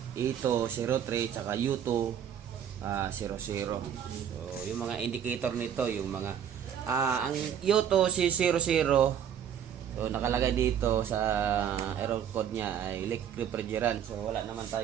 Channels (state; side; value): quieter; left; 9.0 dB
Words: E203 tsaka U200. So yung mga indicator nito, yung mga ang U200, so nakalagay dito sa error code niya ay electric refrigerant. So wala naman